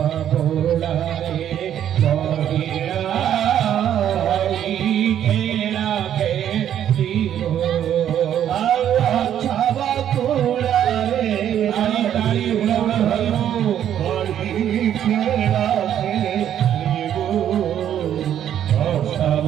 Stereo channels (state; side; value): quieter; left; 10.3 dB